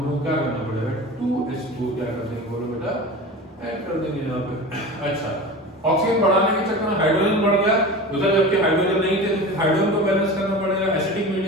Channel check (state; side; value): normal; both; correlation 0.32